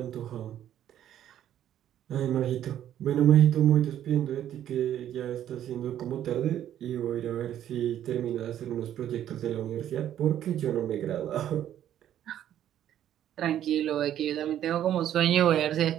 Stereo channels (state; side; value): quieter; left; 11.1 dB